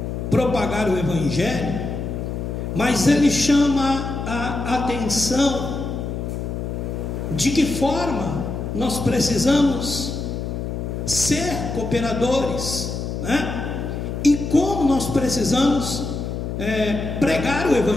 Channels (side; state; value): left; noise; hum, 4 dB below the sound